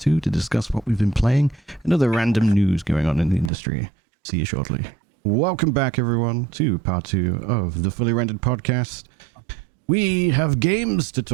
to discuss what we've been playing and other random news going on in the industry. See you shortly. Welcome back, everyone, to part 2 of the Fully Rendered podcast. We have games to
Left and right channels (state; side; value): drops out; left; at 3.5 s